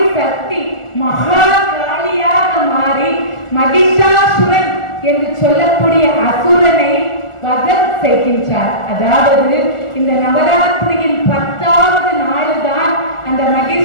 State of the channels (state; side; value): late; right; 1.4 ms